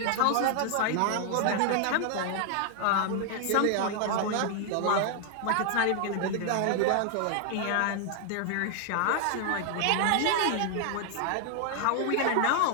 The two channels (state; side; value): different; both; correlation 0.00